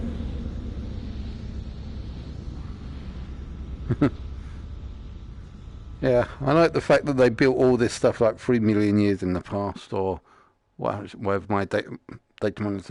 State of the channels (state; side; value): identical; both; correlation 1.00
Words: Yeah, I like the fact that they built all this stuff like 3 million years in the past, or whatever my data